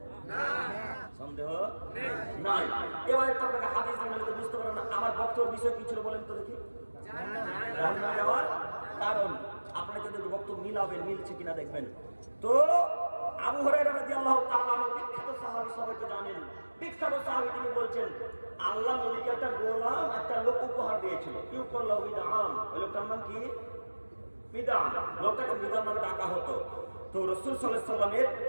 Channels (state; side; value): inverted; both; correlation -1.00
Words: না, সন্দেহ নাই। এবার একটু আপনাকে হাদিস জানলে তো বুঝতে পারেন না আমার বক্তব্যের বিষয় কি ছিল বলেন তো দেখি। জাহান্নামে যাওয়ার কারণ আপনারা যদি বক্তব্য মিলাবেন, মিলছে কিনা দেখবেন। তো আবু হুরায়রা রাদিয়াল্লাহু তাআলা আনহু বিখ্যাত সাহাবী, সবাই তো জানেন, বিখ্যাত সাহাবী, তিনি বলছেন আল্লাহ নবীকে একটা গোলাম একটা লোক উপহার দিয়েছিল। ইউকাল্লাহু মিদাম। ওই লোকটার নাম কি? মিদাম। লোকটাকে মিদাম নামে ডাকা হতো। তো রাসূল সাল্লাল্লাহু আলাইহি ওয়াসাল্লামের